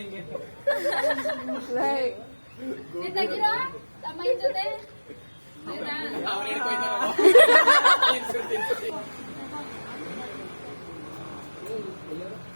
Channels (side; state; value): both; inverted; correlation -1.00